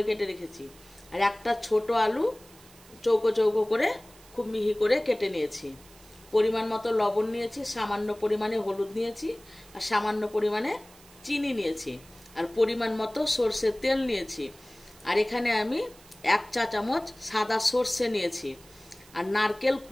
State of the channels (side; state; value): right; noise; hiss, 24 dB below the sound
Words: কেটে রেখেছি। আর একটা ছোট আলু চৌকো চৌকো করে খুব মিহি করে কেটে নিয়েছি। পরিমাণ মতো লবণ নিয়েছি, সামান্য পরিমাণে হলুদ নিয়েছি, আর সামান্য পরিমাণে চিনি নিয়েছি, আর পরিমাণ মতো সর্ষের তেল নিয়েছি। আর এখানে আমি 1 চা চামচ সাদা সর্ষে নিয়েছি। আর নারকেল